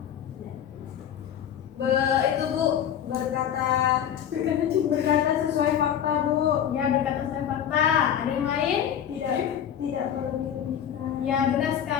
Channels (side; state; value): right; quieter; 9.4 dB